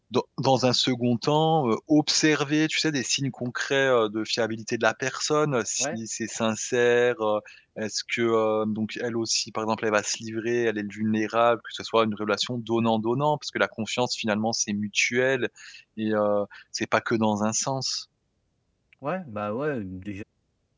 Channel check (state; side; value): identical; both; correlation 1.00